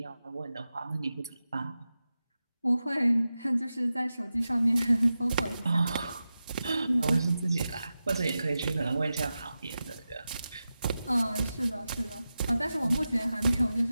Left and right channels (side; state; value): both; inverted; correlation -0.92